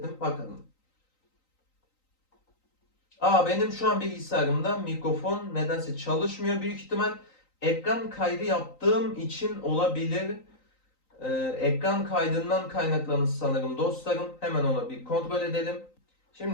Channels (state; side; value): late; right; 3.9 ms